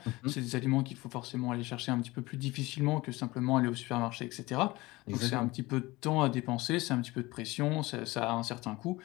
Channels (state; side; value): quieter; right; 21.0 dB